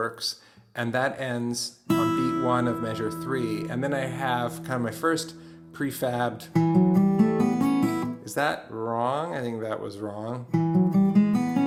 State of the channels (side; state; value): both; identical; correlation 1.00